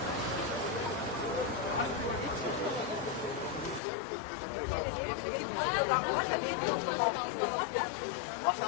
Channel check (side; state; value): right; drops out; at 3.8 s